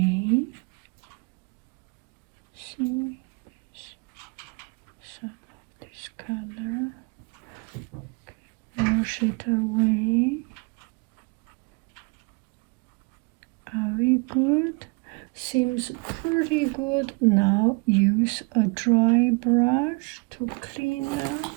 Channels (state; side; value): quieter; left; 31.3 dB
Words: See, some of this color. Okay. Wash it away. Are we good? Seems pretty good. Now use a dry brush to clean